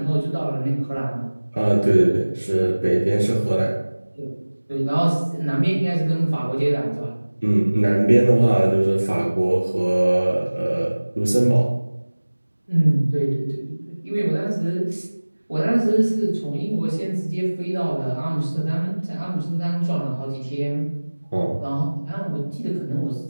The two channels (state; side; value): inverted; both; correlation -1.00